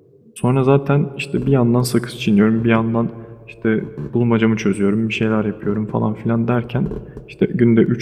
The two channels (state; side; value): identical; both; correlation 1.00